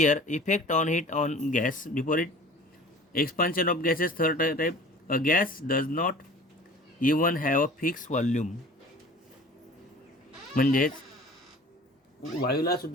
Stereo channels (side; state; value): both; normal; correlation 0.44